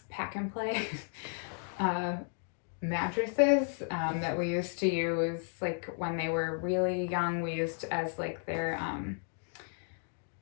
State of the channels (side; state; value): right; silent; 55 dB below the other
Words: pack and play mattresses that we used to use like when they were really young. We used as like their